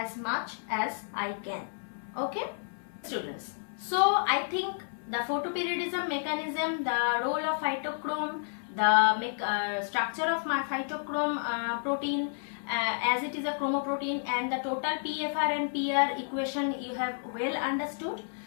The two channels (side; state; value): right; silent; 57 dB below the other